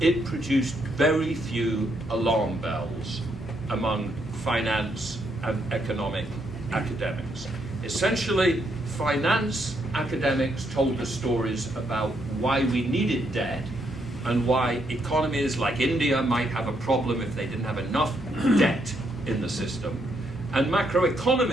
it produced very few alarm bells among finance and economic academics. Essentially, finance academics told us stories about why we needed debt and why economies like India might have a problem if they didn't have enough debt in the system. And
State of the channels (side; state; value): both; normal; correlation 0.76